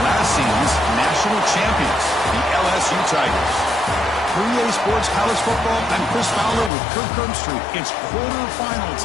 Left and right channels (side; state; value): right; drops out; at 6.7 s